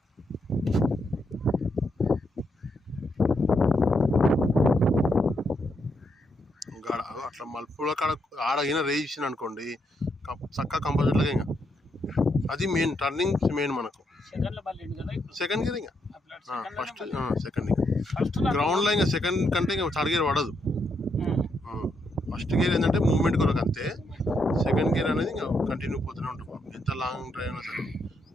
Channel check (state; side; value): normal; both; correlation 0.78